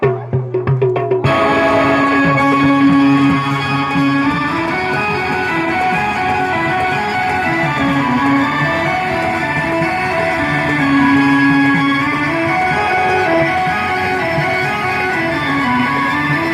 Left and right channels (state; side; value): identical; both; correlation 1.00